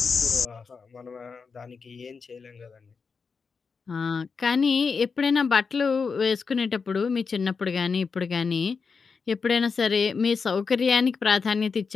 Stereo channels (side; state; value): right; quieter; 5.2 dB